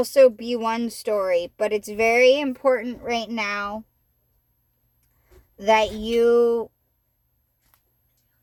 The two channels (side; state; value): both; identical; correlation 1.00